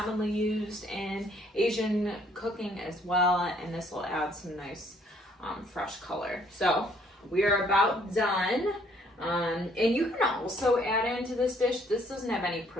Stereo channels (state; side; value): normal; both; correlation 0.64